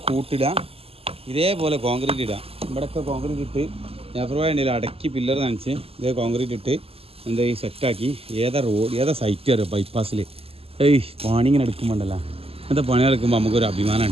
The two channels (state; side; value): late; left; 0.28 ms